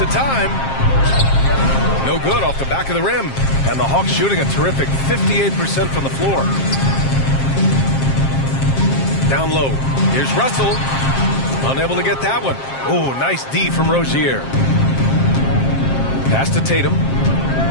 of time. No good off the back of the rim. And the Hawks shooting a terrific 58% from the floor. Down low. Here's Russell. Unable to get that one. Oh, nice D from Rozier. Pass to Tatum.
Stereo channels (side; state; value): right; late; 7.5 ms